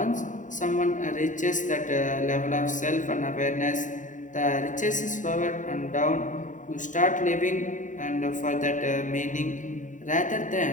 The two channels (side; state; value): right; late; 0.37 ms